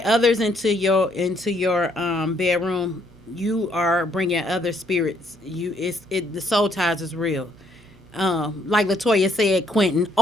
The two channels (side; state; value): both; normal; correlation 0.68